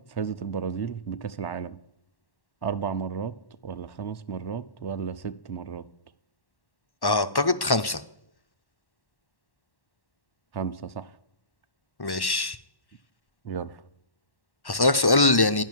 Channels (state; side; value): late; right; 1.1 ms